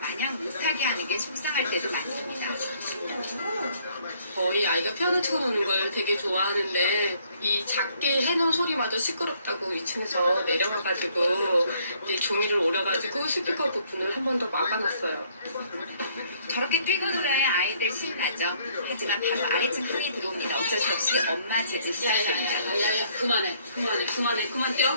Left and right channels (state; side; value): inverted; both; correlation -0.64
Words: 못하게 하는 게 속상할 때도 많습니다. 거의 아이가 피아노 치고 노는 걸 되게 좋아하는데 이 작게 해놓은 소리마저 시끄럽다고 2층에서 내려와가지고 이제 종이를 오려가지고 스피커 부분을 한 번 더 막아놨어요. 저렇게 뛰고 놀아야 아이들 신나죠. 하지만 바로 아래층 흥이 들어옵니다. 어쩔 수 없이 엄마 제지 시작합니다. 야야야 그만